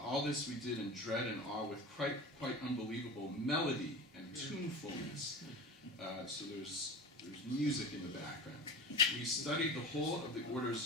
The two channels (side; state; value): both; normal; correlation 0.31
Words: this we did in dread and awe with quite unbelievable melody and tunefulness. So there's music in the background. We studied the whole of the